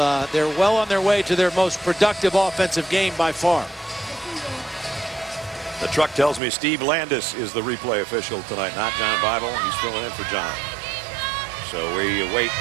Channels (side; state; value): left; drops out; at 6.4 s